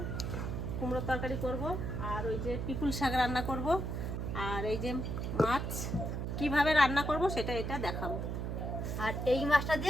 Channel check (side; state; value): right; noise; hum, 3 dB below the sound